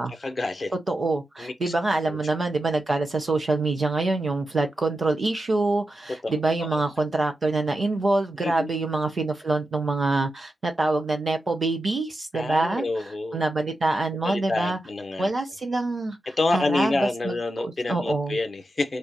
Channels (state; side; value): normal; both; correlation 0.89